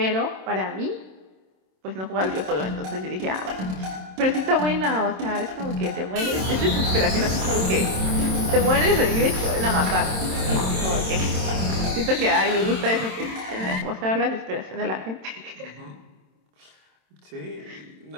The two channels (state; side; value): late; left; 27 ms